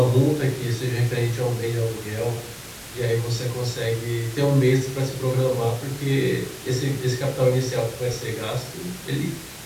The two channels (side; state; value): both; identical; correlation 1.00